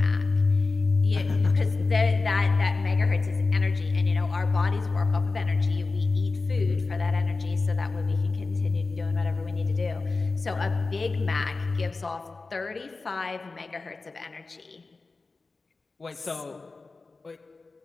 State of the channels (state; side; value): quieter; right; 3.8 dB